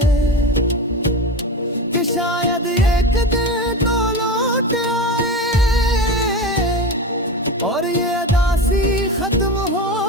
कि शायद एक दिन तो लौट आए और ये अदासी खत्म हो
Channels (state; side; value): normal; both; correlation 0.24